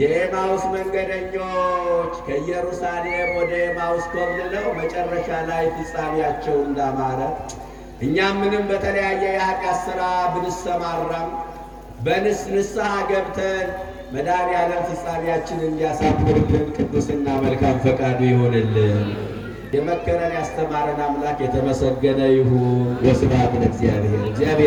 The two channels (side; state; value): both; identical; correlation 1.00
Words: የኤማሁስ መንገደኞች ከኢየሩሳሌም ወደ ኤማሁስ ኮብልለው መጨረሻ ላይ ፍጻሜያቸው እንዳማረ እኛም ምንም በተለያየ የኃጢአት ሥራ ብንሰማራም ንስሐ ገብተን መድኃኔዓለም ፍጻሜያችንን እንዲያሳምርልን ቅዱስና መልካም ፈቃዱ ይሆንልን። የመከረን ያስተማረን አምላክ የተመሰገነ ይሁን። ወስብሐት ለእግዚአብሔር።